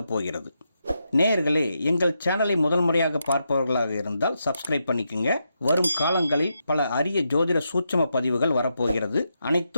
போகிறது. நேயர்களே, எங்கள் சேனலை முதல் முறையாக பார்ப்பவர்களாக இருந்தால் சப்ஸ்கிரைப் பண்ணிக்கோங்க. வரும் காலங்களில் பல அரிய ஜோதிட சூட்சம பதிவுகள் வரப்போகிறது.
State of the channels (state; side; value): inverted; both; correlation -0.84